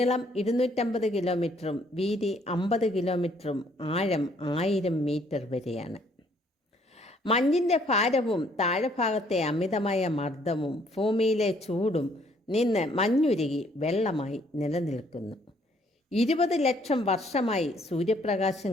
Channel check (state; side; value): normal; both; correlation 0.65